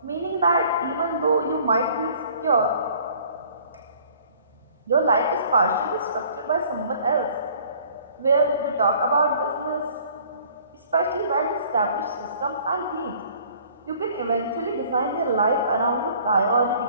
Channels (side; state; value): both; inverted; correlation -0.54